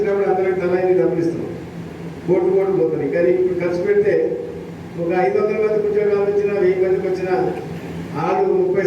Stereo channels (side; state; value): both; identical; correlation 1.00